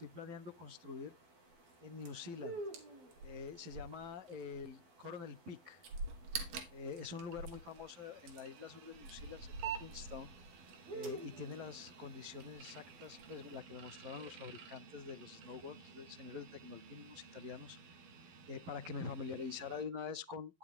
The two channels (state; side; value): late; left; 12 ms